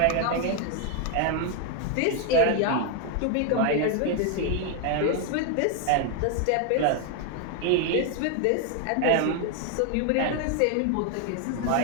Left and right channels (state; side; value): different; both; correlation 0.01